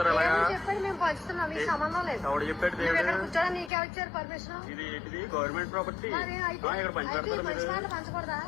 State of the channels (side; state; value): right; drops out; at 3.7 s